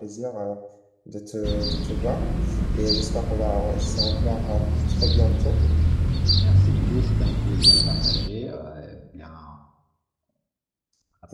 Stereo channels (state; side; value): identical; both; correlation 1.00